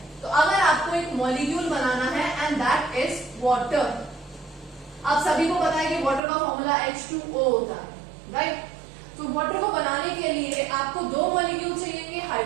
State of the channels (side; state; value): left; drops out; at 6.2 s